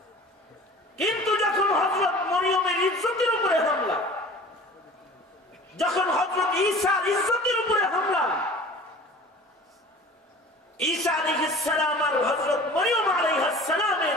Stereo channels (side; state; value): both; normal; correlation 0.42